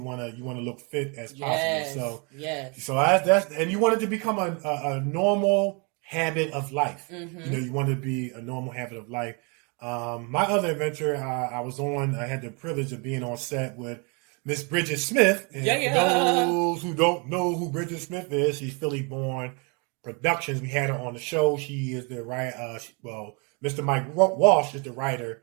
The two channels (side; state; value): left; quieter; 33.4 dB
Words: want to look fit as possible. So that's and you want it to become a normal habit of life. You want to be a normal habit of life. My other adventure, I had the privilege of being on set with Miss Bridget Smith. And for those who don't know who Bridget Smith is, she's Philly born Productions. We had her on the show. She is the writer. Mr. Mike Walsh is the writer